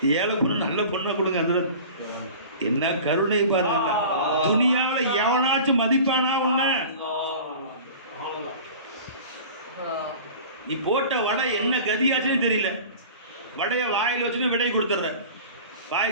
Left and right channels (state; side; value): inverted; both; correlation -0.39